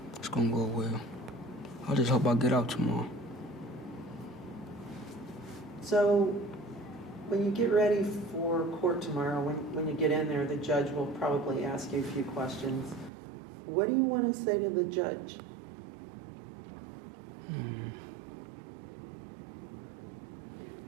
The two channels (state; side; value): drops out; left; at 13.1 s